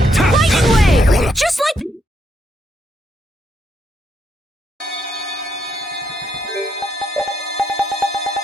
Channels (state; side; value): normal; both; correlation 0.76